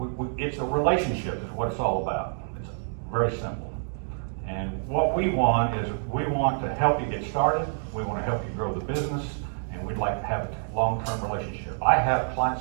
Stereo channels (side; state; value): left; silent; digital silence